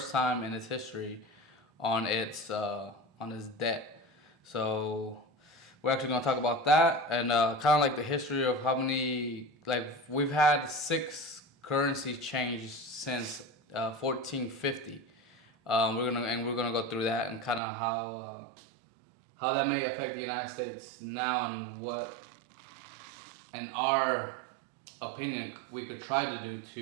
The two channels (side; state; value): left; drops out; at 17.6 s